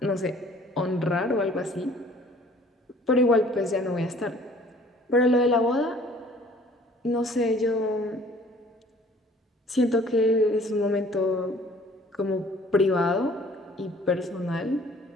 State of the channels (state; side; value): normal; both; correlation 0.54